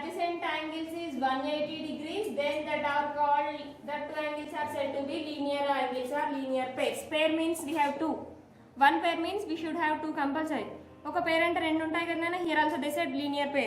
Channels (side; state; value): both; identical; correlation 1.00